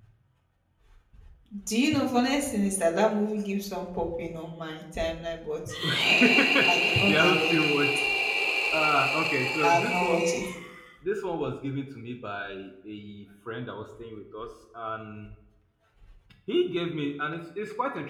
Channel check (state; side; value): identical; both; correlation 1.00